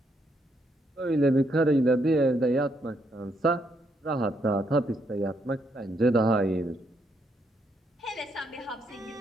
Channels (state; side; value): normal; both; correlation 0.75